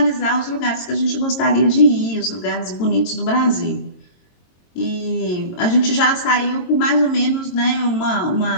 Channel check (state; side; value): late; right; 22 ms